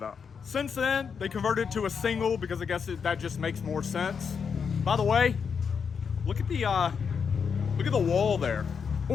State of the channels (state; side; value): quieter; right; 6.3 dB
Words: Since then, they converted to a single because I guess that just makes more sense. By the way, look at the wall there.